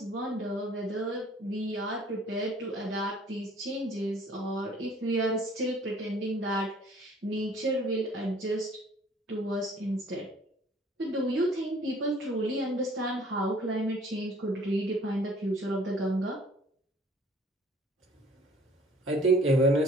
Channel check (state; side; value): normal; both; correlation 0.55